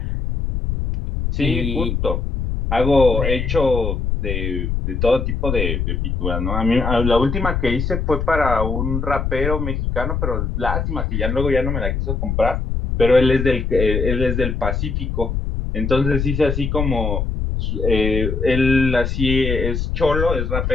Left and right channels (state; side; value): noise; left; rumble, 1 dB below the sound